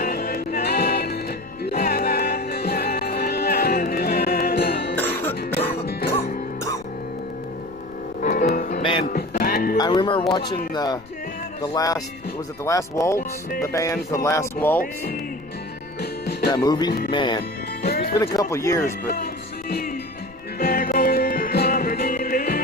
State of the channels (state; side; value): noise; left; rumble, 23 dB below the sound